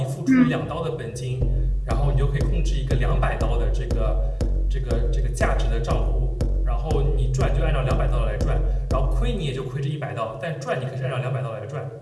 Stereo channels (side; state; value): both; identical; correlation 1.00